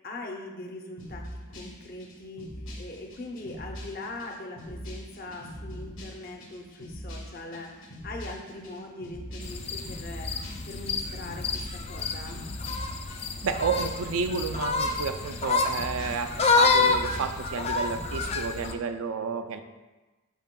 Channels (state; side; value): normal; both; correlation -0.09